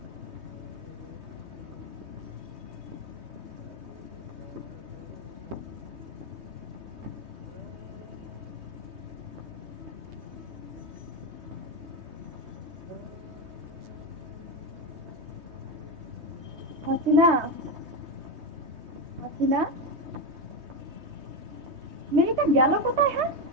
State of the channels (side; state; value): left; late; 3.2 ms